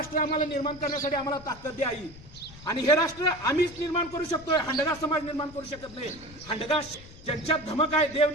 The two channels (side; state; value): left; noise; rumble, 19 dB below the sound